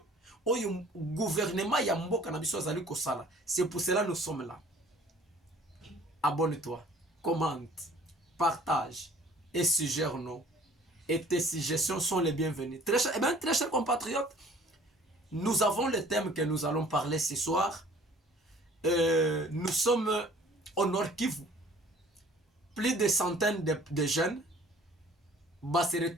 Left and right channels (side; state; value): both; normal; correlation 0.53